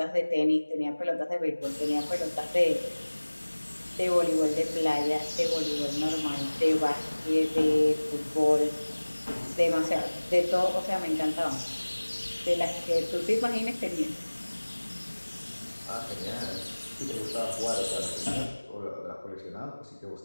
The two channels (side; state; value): both; inverted; correlation -1.00